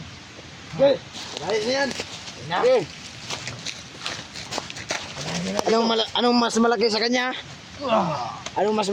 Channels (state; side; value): identical; both; correlation 1.00